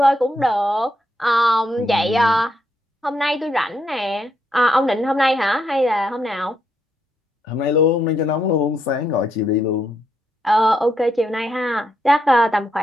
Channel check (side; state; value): both; normal; correlation 0.78